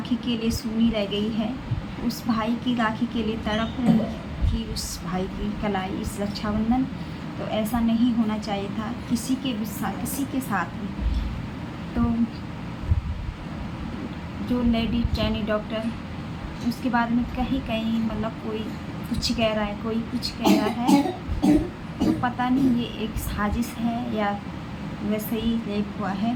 के लिए सूनी रह गई है, उस भाई की राखी के लिए तड़प रही थी उस भाई की कलाई इस रक्षाबंधन। तो ऐसा नहीं होना चाहिए था किसी के साथ भी। तो जो लेडी ट्रेनी डॉक्टर, उसके बारे में कहीं कहीं मतलब कोई कुछ कह रहा है, कोई कुछ कह रहा है, तो पता नहीं ये एक साजिश है या वैसे ही रेप हुआ है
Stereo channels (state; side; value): identical; both; correlation 1.00